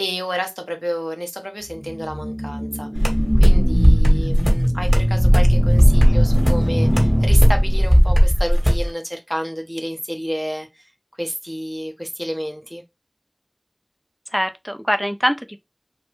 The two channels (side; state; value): both; identical; correlation 1.00